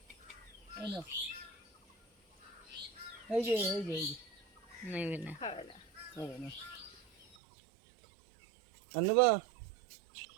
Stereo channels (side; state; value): left; drops out; at 7.4 s